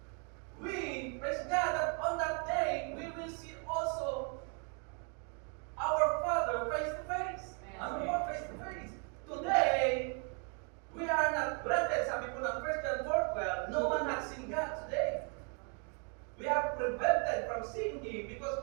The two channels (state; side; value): quieter; left; 38.3 dB